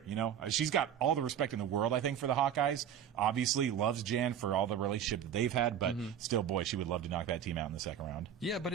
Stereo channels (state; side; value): quieter; left; 9.0 dB